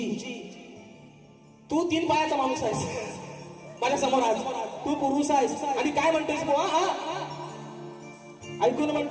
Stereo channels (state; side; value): identical; both; correlation 1.00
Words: तू 3 पायाचा माणूस आहेस माझ्या समोर, आज तू पुरुष आहेस आणि काय म्हणतोस बुवा. ऐकून